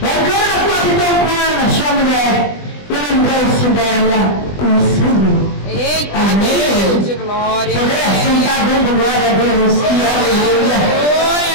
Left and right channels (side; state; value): right; late; 20 ms